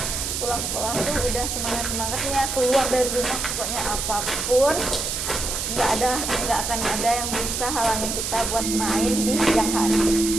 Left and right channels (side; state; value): right; noise; hiss, 2 dB below the sound